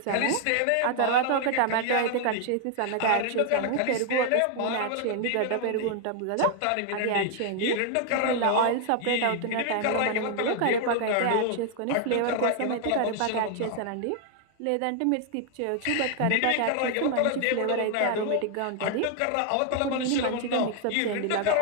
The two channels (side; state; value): both; different; correlation 0.00